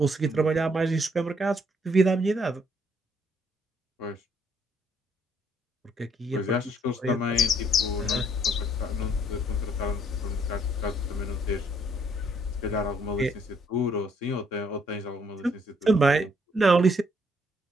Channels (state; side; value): normal; both; correlation 0.68